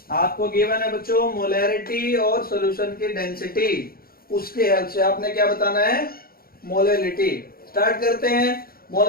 आपको गिवन है बच्चों मोलैरिटी और सॉल्यूशन की डेंसिटी, उसके हेल्प से आपने क्या बताना है, मोलैलिटी। स्टार्ट करते हैं।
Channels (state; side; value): late; right; 0.43 ms